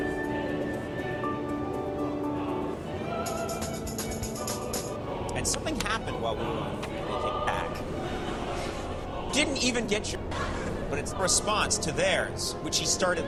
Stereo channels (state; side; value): identical; both; correlation 1.00